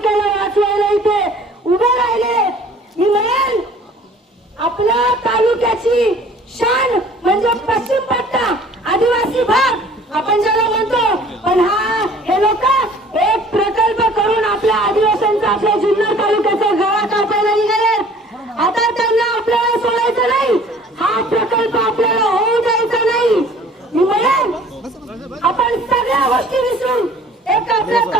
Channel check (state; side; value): normal; both; correlation 0.51